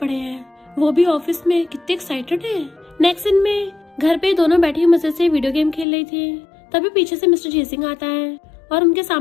हैं, वो भी ऑफिस में, कितने एक्साइटेड है। नेक्स्ट दिन में घर पे दोनों बैठी मजे से वीडियो गेम खेल रही थी। तभी पीछे से मिस्टर जीसिंग आता है और उनके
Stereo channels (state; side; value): drops out; right; at 5.9 s